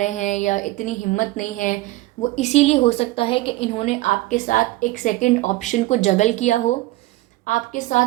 हैं, या इतनी हिम्मत नहीं है, वो इसीलिए हो सकता है कि इन्होंने आपके साथ एक सेकंड ऑप्शन को जगल किया हो, आपके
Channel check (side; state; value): left; quieter; 18.6 dB